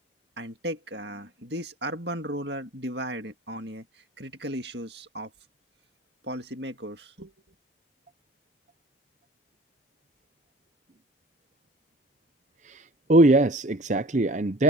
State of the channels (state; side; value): normal; both; correlation 0.45